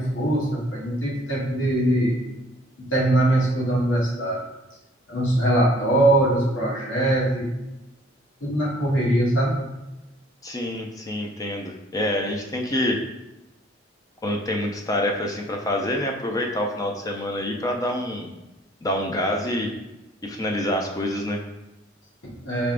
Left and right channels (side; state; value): both; normal; correlation 0.57